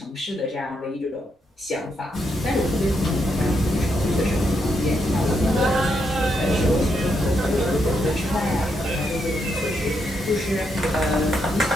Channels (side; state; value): both; normal; correlation 0.79